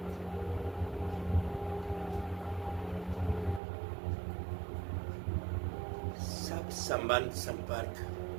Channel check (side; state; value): left; drops out; at 3.6 s